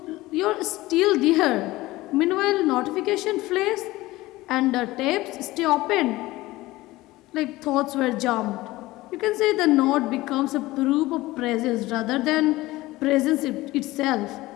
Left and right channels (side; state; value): right; quieter; 18.7 dB